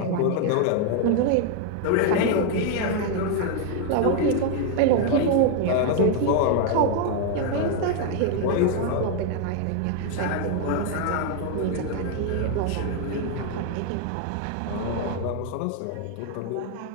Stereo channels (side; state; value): both; different; correlation 0.00